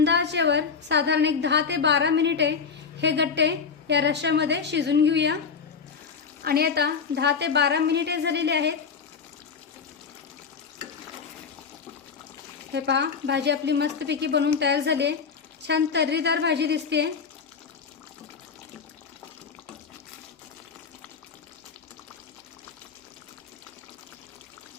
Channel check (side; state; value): right; quieter; 5.8 dB